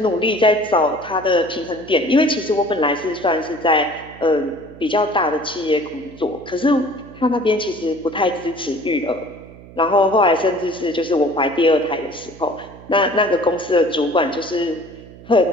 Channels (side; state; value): right; noise; hum, 19 dB below the sound